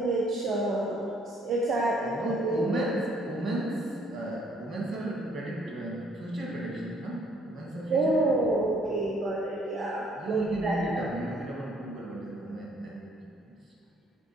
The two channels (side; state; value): both; normal; correlation 0.63